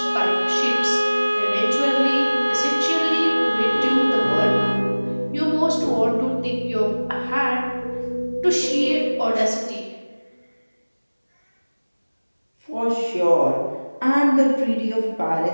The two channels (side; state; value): both; inverted; correlation -1.00